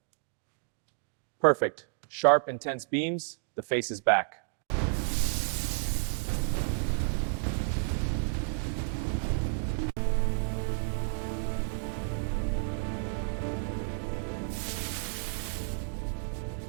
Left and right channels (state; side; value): silent; left; digital silence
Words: Perfect. Sharp, intense beams. The face is back.